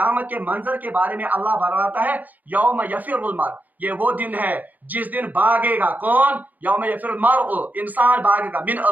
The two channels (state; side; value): late; left; 0.082 ms